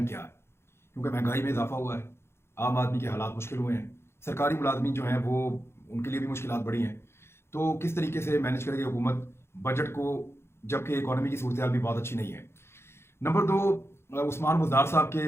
क्या है, क्योंकि महंगाई में इजाफा हुआ है, आम आदमी के हालात मुश्किल हुए हैं, सरकारी मुलाजमीन जो हैं वो उनके लिए भी मुश्किलात बढ़ी हैं। तो किस तरीके से मैनेज करेगी हुकूमत बजट को, जबकि इकॉनमी की सूरत हाल भी बहुत अच्छी नहीं है। नंबर 2, उस्मान बुज़दार साहब के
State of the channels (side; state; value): right; late; 0.12 ms